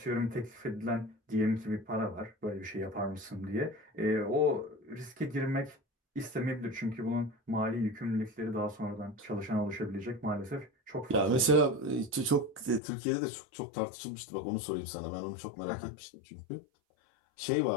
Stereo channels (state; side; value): drops out; right; at 12.8 s